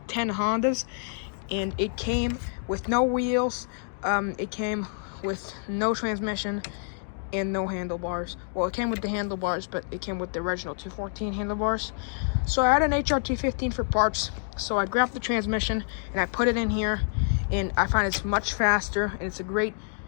10 Hondas, and it came with no wheels. It came with no transmission and no handlebars. Well, it came with the handlebars, but it came with the original 214 handlebars. So I had an HR215 for parts, so I grabbed the transmission and I put it in here, and I find it's much faster, and it's a great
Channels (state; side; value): silent; right; 60 dB below the other